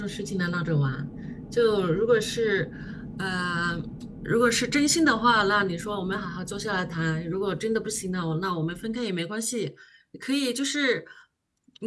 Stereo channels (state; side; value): identical; both; correlation 1.00